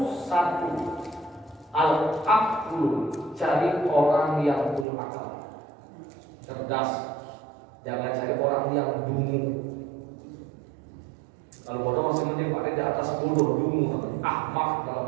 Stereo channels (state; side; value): drops out; left; at 4.9 s